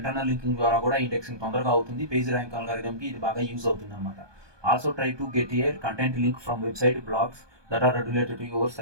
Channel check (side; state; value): left; late; 1.2 ms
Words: లింకింగ్ ద్వారా కూడా ఇండెక్సింగ్ తొందరగా అవుతుంది. పేజ్ ర్యాంక్ అల్గారిథమ్కి ఇది బాగా యూజ్ అవుతుంది అనమాట. Also try to get a content link from website blogs that are related to your